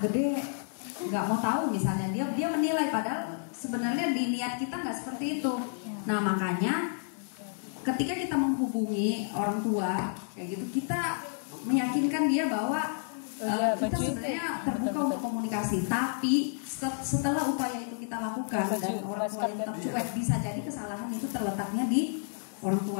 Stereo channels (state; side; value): silent; right; digital silence